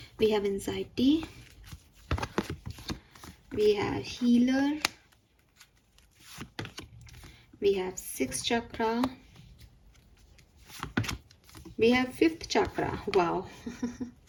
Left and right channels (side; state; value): both; identical; correlation 1.00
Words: We have anxiety, we have healer, we have 6th chakra, we have 5th chakra. Wow.